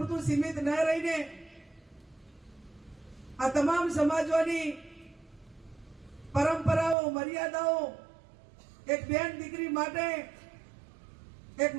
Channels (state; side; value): drops out; left; at 7.0 s